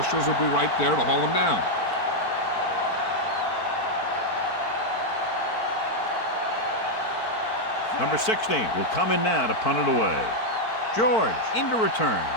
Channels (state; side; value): late; right; 4.5 ms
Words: will be right there to haul him down. Number 16 will come in now to punt it away. George into return.